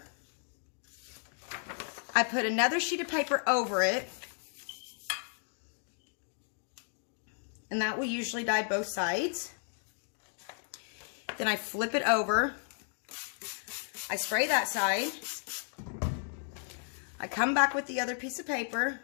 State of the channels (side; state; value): right; silent; 55 dB below the other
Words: I put another sheet of paper over it, and that will usually dye both sides. Then I flip it over. I spray that side. I come back with the other piece of paper.